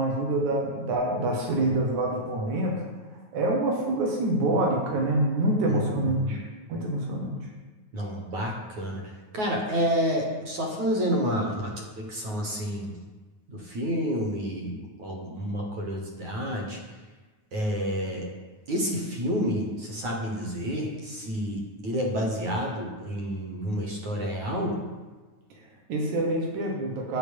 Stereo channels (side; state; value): left; late; 9.4 ms